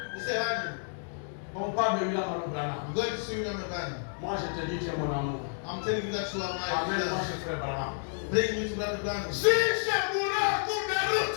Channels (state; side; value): silent; right; digital silence